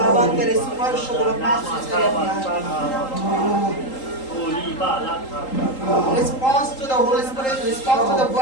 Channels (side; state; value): right; late; 3.8 ms